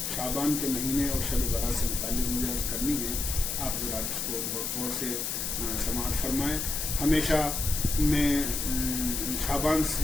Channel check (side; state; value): left; noise; hiss, 2 dB below the sound